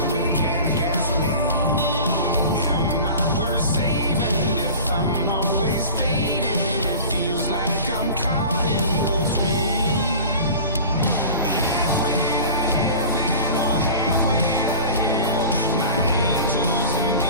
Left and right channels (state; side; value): inverted; both; correlation -0.38